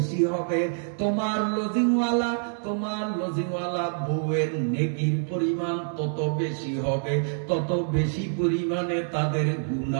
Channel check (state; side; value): silent; left; 61 dB below the other